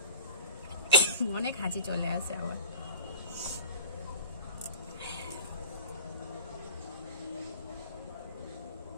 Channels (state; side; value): inverted; both; correlation -0.37